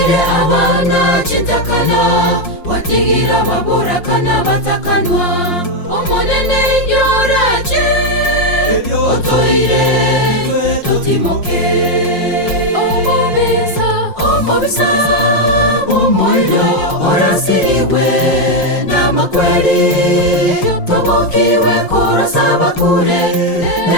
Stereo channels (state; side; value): late; right; 5.6 ms